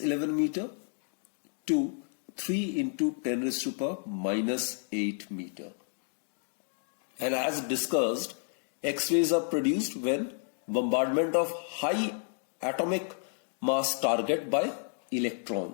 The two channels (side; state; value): right; silent; 57 dB below the other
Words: meter to 3 into 10 raised to power minus 8 meter. And as discussed, X-rays are produced when bombardment of high atomic mass target by